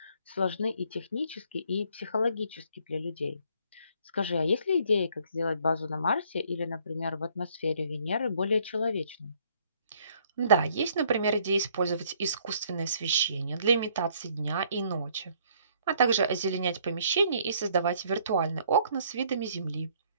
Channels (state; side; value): inverted; both; correlation -0.63